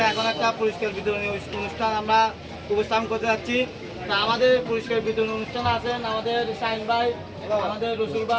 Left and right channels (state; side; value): identical; both; correlation 1.00